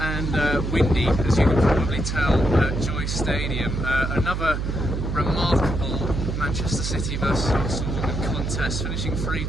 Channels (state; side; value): noise; right; hum, 2 dB below the sound